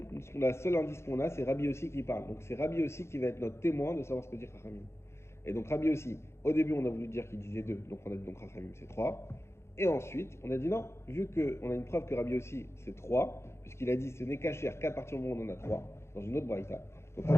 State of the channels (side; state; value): right; late; 0.13 ms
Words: la seule indice qu'on a, c'est Rabbi Yossi qui parle. Donc c'est Rabbi Yossi qui va être notre témoin de savoir ce que dit Chachamim. Et donc Rabbi Yossi, au début, on a voulu dire qu'il disait 2, donc on a dit donc Chachamim c'est 3. Et ensuite, on a dit non, vu qu'on a une preuve que Rabbi Yossi c'est 3, puisqu'il a dit ce n'est cachère qu'à partir du moment où on en a 3, dans une autre braïta. Donc